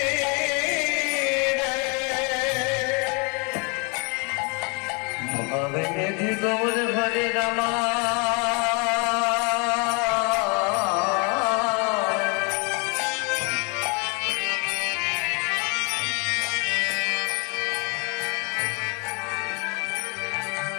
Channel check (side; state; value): right; quieter; 32.7 dB